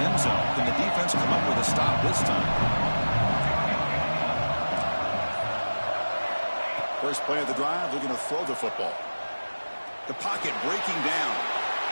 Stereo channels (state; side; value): inverted; both; correlation -1.00